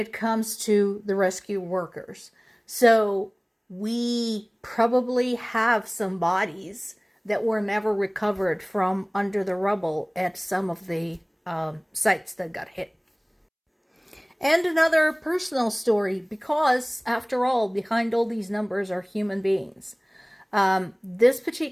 comes to the rescue workers. So we probably have some bodies that were never recovered from under the rubble at some of the sites that got hit. And another personal story, because after all, behind all these numbers are human beings. This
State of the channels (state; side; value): identical; both; correlation 1.00